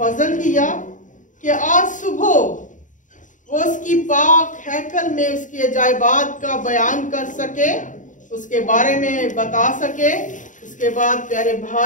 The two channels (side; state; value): right; late; 0.37 ms